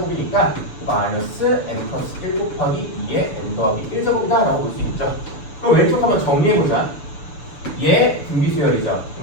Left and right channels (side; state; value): right; late; 6.9 ms